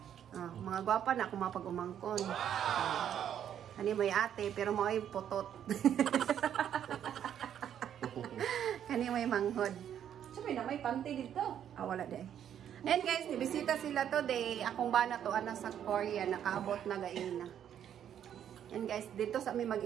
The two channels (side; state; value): left; quieter; 9.6 dB